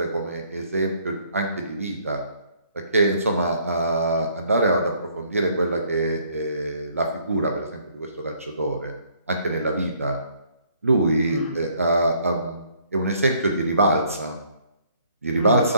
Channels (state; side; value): inverted; both; correlation -0.64